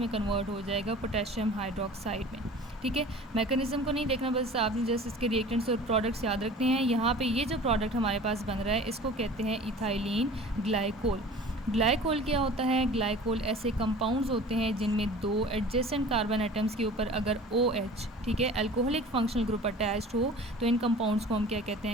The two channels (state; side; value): normal; both; correlation 0.42